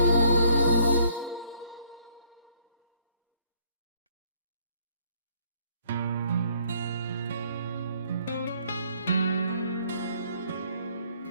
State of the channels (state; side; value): inverted; both; correlation -0.63